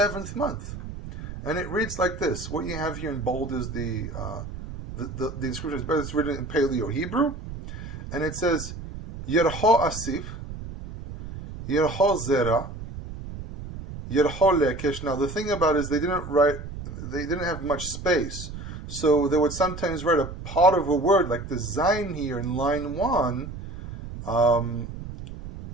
month. And it reads like this. What you have here in bold is the inscription, but it's written in Paleo Hebrew. And it says, Yerho Asif, Yerho Zera, Yerho Lekesh. Now the thing about it is they didn't have much space. So they would sometimes write a part of a word, like the Zayin here in line 1,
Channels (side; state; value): right; noise; rumble, 10 dB below the sound